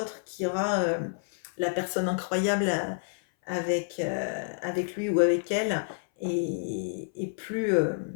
qui aura la personne incroyable avec lui ou avec elle, et plus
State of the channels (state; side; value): silent; right; 57 dB below the other